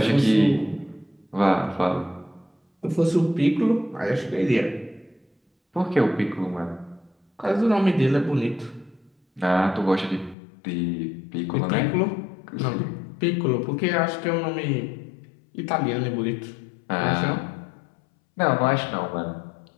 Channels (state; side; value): drops out; right; at 10.4 s